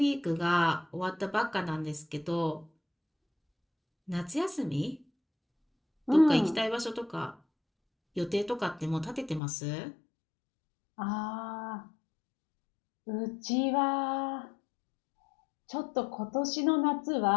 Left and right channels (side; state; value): right; drops out; at 9.4 s